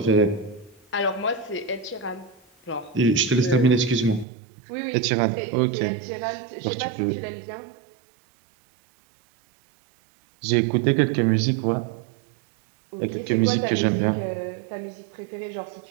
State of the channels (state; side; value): drops out; left; at 4.2 s